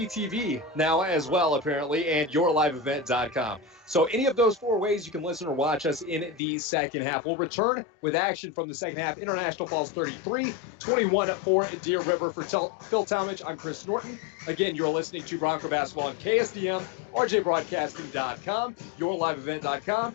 TV now as well, apparently, and yourliveevent.com. So any of those 4 ways you can listen or watch us in the second half. We'll return with action from the second half. International Falls 33, 21 for Deer River. For Phil Talmadge, I'm Chris Norton. Again, you're listening to Bronco Basketball on KSDM, RJBroadcasting.com, yourliveevent.com,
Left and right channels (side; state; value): right; drops out; at 6.4 s